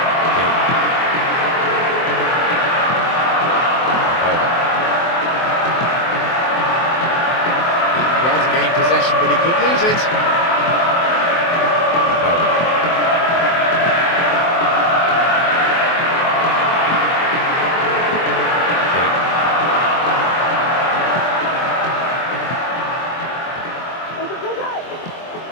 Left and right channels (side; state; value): right; late; 23 ms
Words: Well to gain possession, but he could lose it.